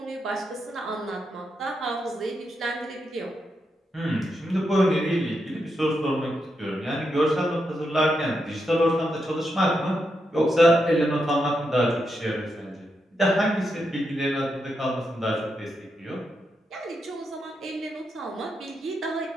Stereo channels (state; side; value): normal; both; correlation 0.84